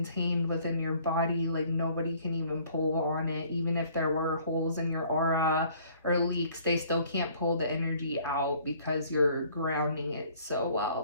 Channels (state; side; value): inverted; both; correlation -0.57